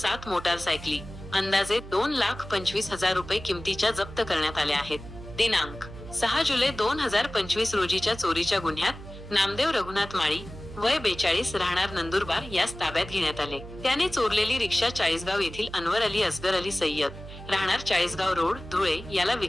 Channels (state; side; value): noise; right; hum, 14 dB below the sound